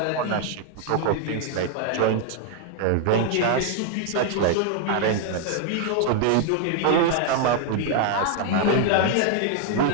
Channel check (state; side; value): different; both; correlation 0.00